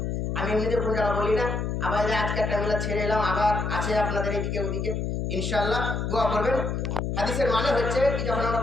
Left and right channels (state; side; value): noise; left; hum, 1 dB below the sound